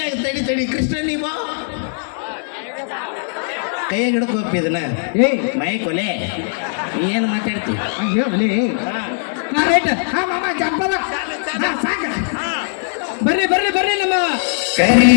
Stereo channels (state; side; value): silent; right; 55 dB below the other